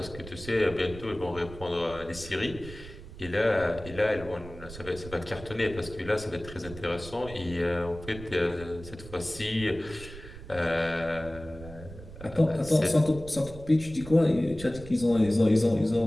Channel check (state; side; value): noise; right; rumble, 15 dB below the sound